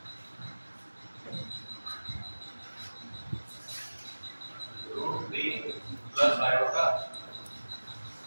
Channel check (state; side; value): inverted; both; correlation -1.00